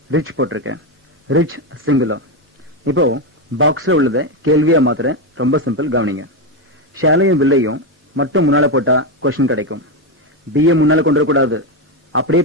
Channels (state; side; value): normal; both; correlation 0.09